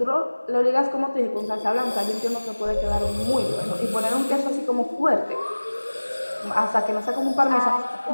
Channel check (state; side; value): inverted; both; correlation -1.00